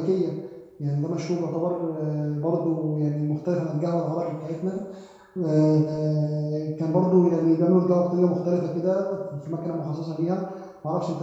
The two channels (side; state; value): both; identical; correlation 1.00